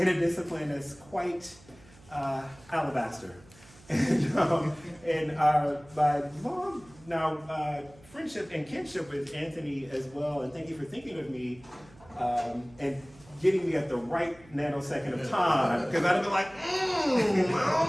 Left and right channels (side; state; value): right; noise; hum, 25 dB below the sound